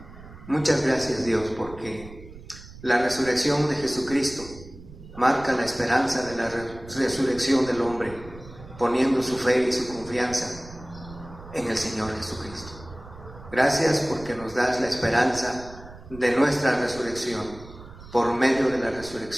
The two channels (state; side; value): noise; right; rumble, 17 dB below the sound